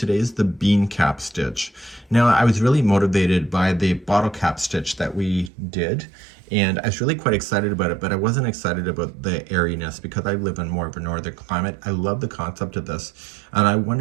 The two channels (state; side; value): drops out; left; at 5.5 s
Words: is the bean cap stitch. Now, I was really motivated by the bottle cap stitch that we did, and I was really quite excited about it, but I wasn't excited about the airiness because I live in more of a northern climate. I love the concept of this, and I